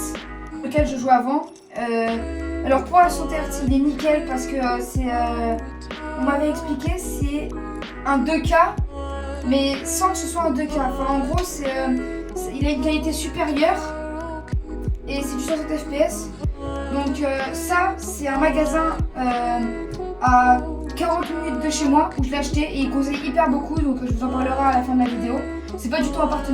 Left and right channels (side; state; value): both; identical; correlation 1.00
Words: lequel je jouais avant. Alors pour la 60 Hz, il est nickel parce que on m'avait expliqué, c'est un 2K, mais sans que ce soit un 2K. Enfin en gros, il a une qualité supérieure et c'est du 60 FPS. Donc ça, c'est un magasin à 40 minutes de chez moi où je l'ai acheté et il conseille hyper beaucoup, donc je vous en parlerai à la fin de la vidéo. C'est pas du tout un